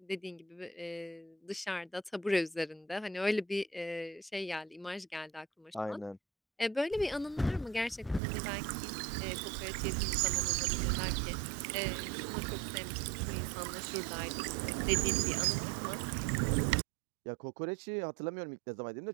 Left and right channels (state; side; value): drops out; left; at 8.2 s